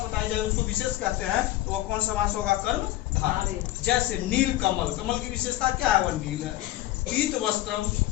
जाए उसको विशेष कहते हैं, तो वह कौन समास होगा? कर्मधारय। जैसे नील कमल, कमल की विशेषता क्या है? वह नील है। पीत वस्त्रम,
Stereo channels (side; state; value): right; quieter; 15.5 dB